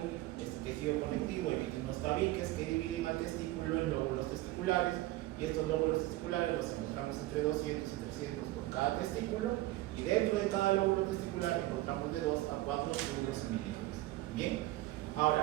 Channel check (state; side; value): quieter; left; 17.4 dB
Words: Este tejido conectivo emite unos tabiques que dividen al testículo en lóbulos testiculares, y estos lóbulos testiculares los encontramos entre 200 y 300 por cada testículo, y dentro de cada lóbulo testicular encontramos de 2 a 4 túbulos seminíferos. Bien,